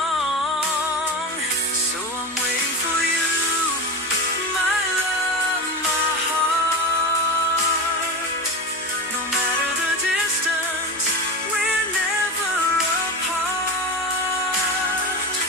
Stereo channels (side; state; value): both; normal; correlation 0.24